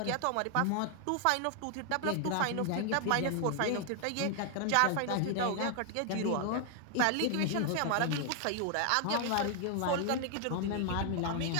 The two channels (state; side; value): different; both; correlation 0.00